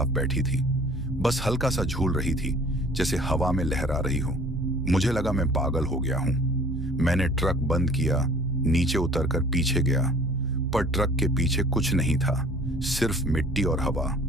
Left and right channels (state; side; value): normal; both; correlation 0.50